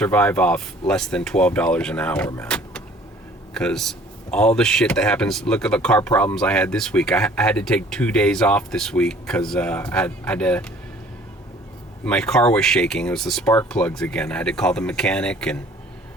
off less than $12 an hour, man. Because all the shit that happens, look at the car problems I had this week. I had to take 2 days off this week because I had to, my car was shaking. It was the spark plugs again. I had to call the mechanic, and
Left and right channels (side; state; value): both; normal; correlation 0.54